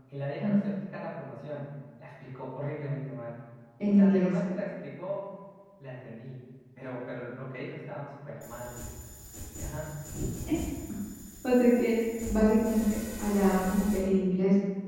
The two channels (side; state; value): both; identical; correlation 1.00